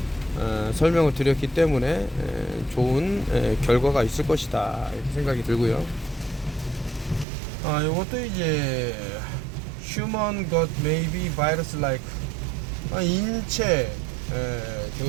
설명을 드렸기 때문에 좋은 결과가 있을 것이다 이렇게 생각이 들고요. 요것도 이제 human gut may be virus like, 인체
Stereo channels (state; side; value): drops out; left; at 7.2 s